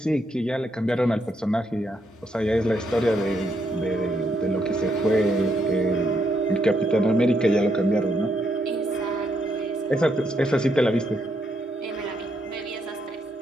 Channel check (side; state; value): both; normal; correlation 0.77